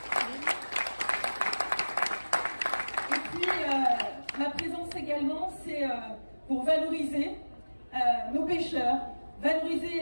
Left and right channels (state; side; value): inverted; both; correlation -1.00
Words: Et puis, ma présence également, c'est pour valoriser nos pêcheurs,